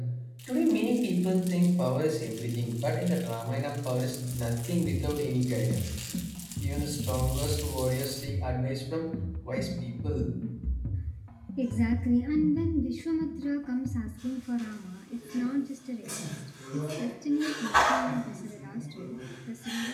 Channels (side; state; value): both; identical; correlation 1.00